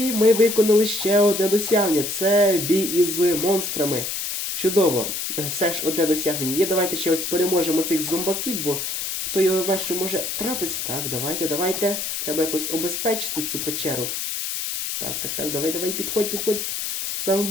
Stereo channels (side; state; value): left; noise; hiss, 3 dB below the sound